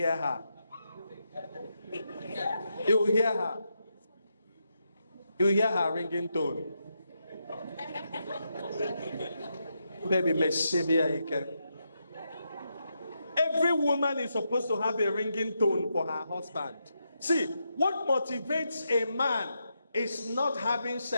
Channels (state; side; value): inverted; both; correlation -0.83